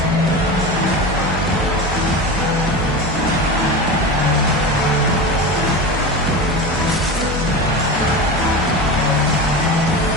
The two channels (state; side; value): normal; both; correlation 0.25